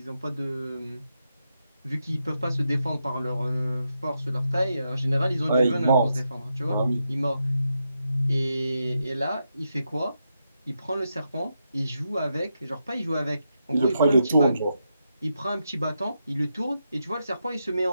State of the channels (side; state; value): both; inverted; correlation -0.84